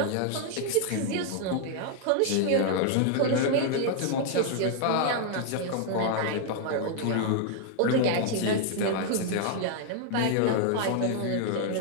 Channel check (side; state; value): both; different; correlation 0.00